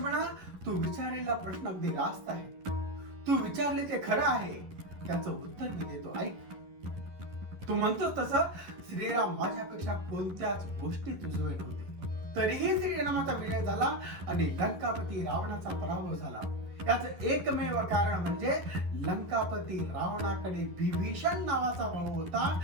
तू विचारलेला प्रश्न अगदी रास्त आहे. तू विचारले ते खरं आहे. त्याचं उत्तर मी देतो, ऐक. तो म्हणतो तसं श्रीराम माझ्यापेक्षा कोणत्याच गोष्टीत उजवे नव्हते. तरीही श्रीरामाचा विजय झाला आणि लंकापती रावणाचा पराभव झाला. याचं एकमेव कारण म्हणजे लंकापती रावणाकडे विभीषण नावाचा भाऊ होता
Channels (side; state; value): left; late; 11 ms